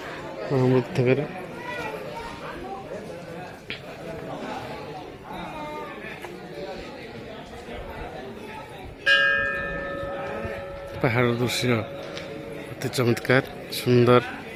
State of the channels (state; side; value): identical; both; correlation 1.00